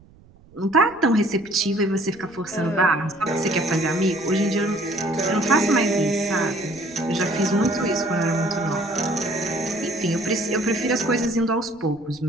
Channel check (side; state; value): right; noise; rumble, 26 dB below the sound